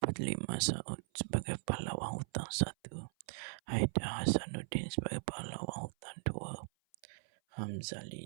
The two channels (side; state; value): left; silent; 52 dB below the other